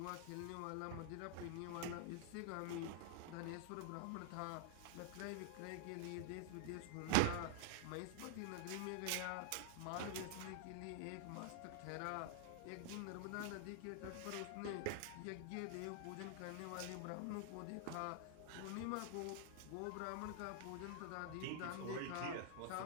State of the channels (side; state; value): both; different; correlation 0.00